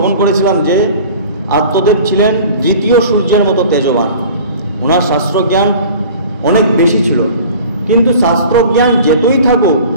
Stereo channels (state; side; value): inverted; both; correlation -0.43